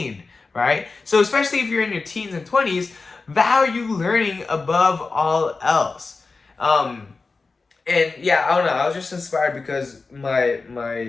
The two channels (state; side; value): quieter; right; 4.1 dB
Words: right? So especially if you're in your teens and 20s, value learning above all else. And yeah, I don't know, I was just inspired because